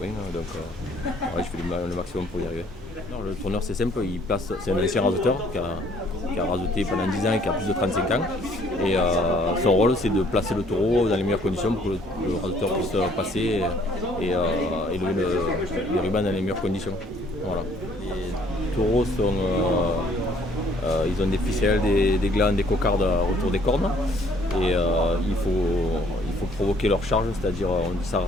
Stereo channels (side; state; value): both; normal; correlation 0.61